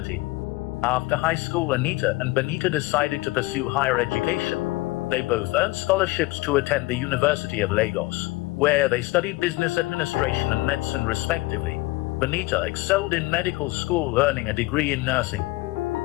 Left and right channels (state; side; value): quieter; right; 20.7 dB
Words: After high school, Anita and Bonita decided to pursue higher education. They both earned scholarships to attend the University of Lagos, where they studied business administration and medicine respectively. Bonita excelled in medical school, earning a degree in nursing.